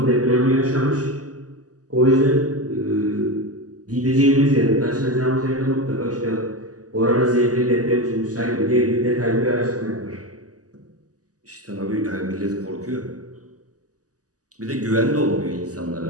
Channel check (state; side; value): late; left; 0.67 ms